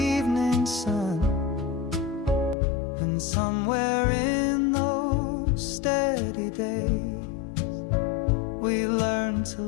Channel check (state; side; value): drops out; right; at 2.6 s